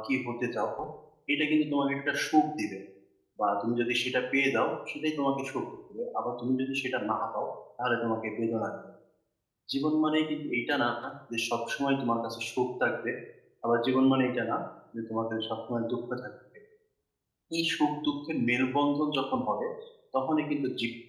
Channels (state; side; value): identical; both; correlation 1.00